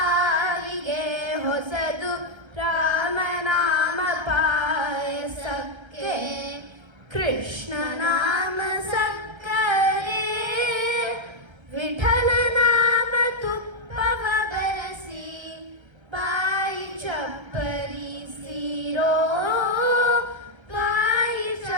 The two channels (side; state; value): left; late; 1.3 ms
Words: ಹೊಸದು ರಾಮನಾಮ ಪಾಯಸಕ್ಕೆ ಕೃಷ್ಣ ನಾಮ ಸಕ್ಕರೆ ವಿಠಲ ನಾಮ ತುಪ್ಪವ ಬೆರೆಸಿ ಬಾಯಿ ಚಪ್ಪರಿಸಿರೋ ಬಾಯಿ